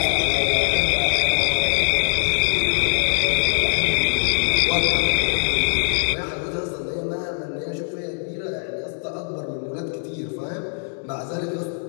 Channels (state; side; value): silent; right; digital silence